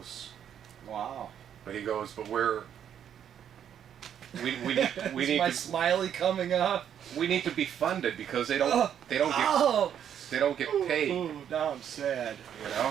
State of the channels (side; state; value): left; quieter; 9.2 dB